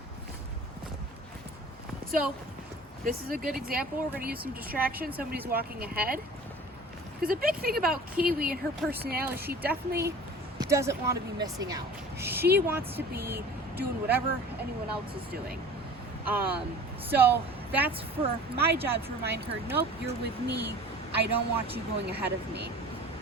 So, this is a good example. We're going to use some distraction. Somebody's walking ahead. Because a big thing about Kiwi and her personality, she definitely doesn't want to be missing out. She wants to be doing whatever anyone else is doing. So that's for my job to remind her, nope, you're with me. I don't want you going ahead of me.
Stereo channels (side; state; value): both; normal; correlation 0.43